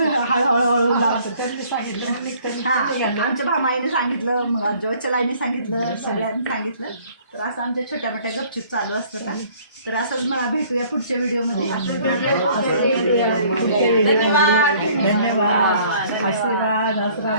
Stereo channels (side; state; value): both; inverted; correlation -0.56